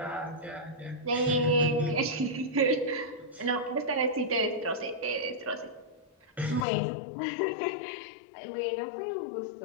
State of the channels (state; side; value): drops out; right; at 6.7 s